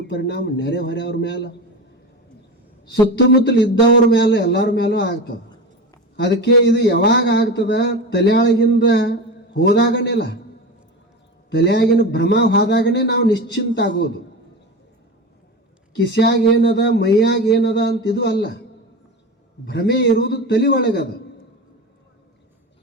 ಪರಿಣಾಮ ನೆರೆ ಹೊರೆಯವ್ರ ಮ್ಯಾಲ, ಸುತ್ತಮುತ್ತಲು ಇದ್ದವ್ರ ಮೇಲೆ, ಎಲ್ಲರ ಮೇಲೂ ಆಗ್ತದೆ. ಅದಕ್ಕೆ ಇದು ಯಾವಾಗ ಆಗ್ತದ, ತಲೆಯೊಳಗಿಂದ ಹೋದಾಗನೇಲ್ಲ, ತಲೆಯಾಗಿನ ಭ್ರಮ ಹೋದಾಗನೇ ನಾವು ನಿಶ್ಚಿಂತ ಆಗೋದು. ಕಿಸ್ಯಾಗ ಏನದ, ಮೈಯಾಗ ಏನದ ಅಂತ ಇದು ಅಲ್ಲ. ಭ್ರಮೆ ಇರುವುದು ತಲೆ ಒಳಗದ.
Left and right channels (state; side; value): normal; both; correlation 0.25